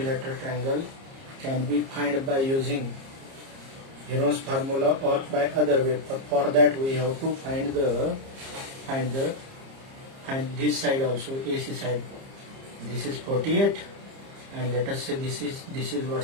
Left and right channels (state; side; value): late; left; 30 ms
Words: triangle can be found by using Heron's formula or by other way. For that we have to find this side also, AC side. This is 48, and let us say this is what,